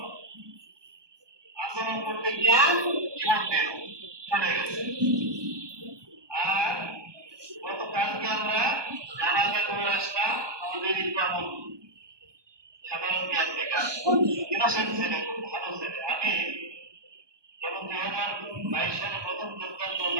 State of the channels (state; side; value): late; left; 1.2 ms